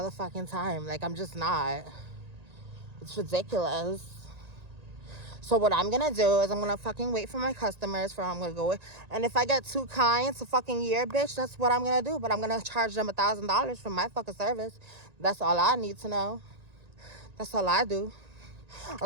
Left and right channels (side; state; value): left; late; 1.9 ms